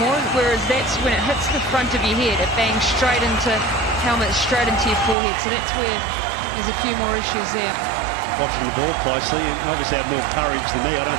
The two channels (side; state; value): left; drops out; at 5.2 s